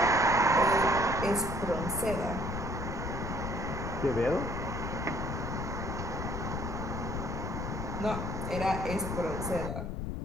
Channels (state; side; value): noise; left; rumble, 4 dB below the sound